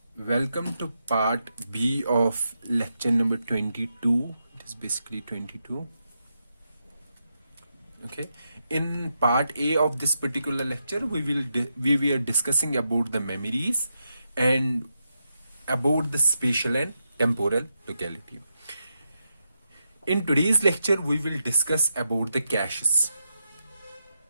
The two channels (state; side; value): inverted; both; correlation -0.85